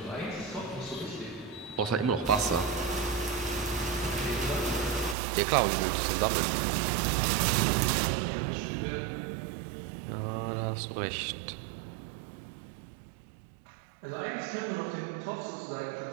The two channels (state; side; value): drops out; left; at 5.2 s